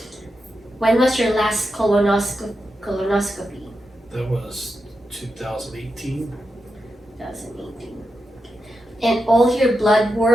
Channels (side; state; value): both; normal; correlation 0.88